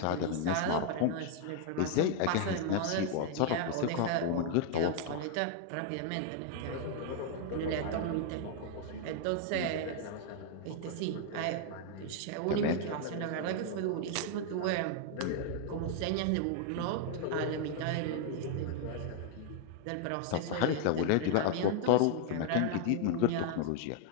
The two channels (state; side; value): different; both; correlation 0.00